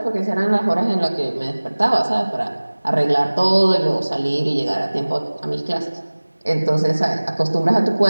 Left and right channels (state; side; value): inverted; both; correlation -1.00